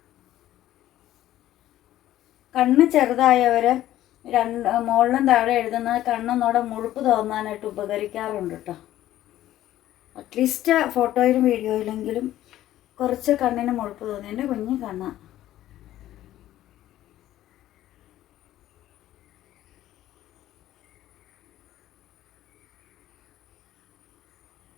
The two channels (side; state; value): right; quieter; 13.6 dB